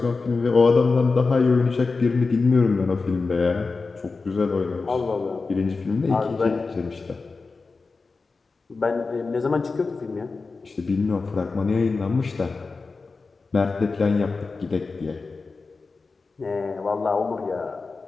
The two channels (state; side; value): quieter; right; 4.1 dB